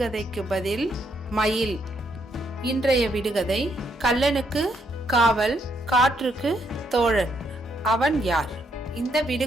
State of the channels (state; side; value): normal; both; correlation 0.74